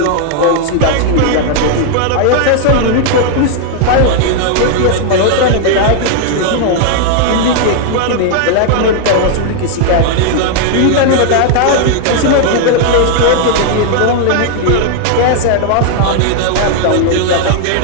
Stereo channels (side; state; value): both; different; correlation 0.00